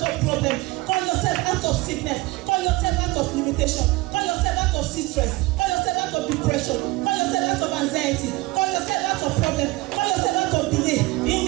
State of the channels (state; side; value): quieter; left; 21.2 dB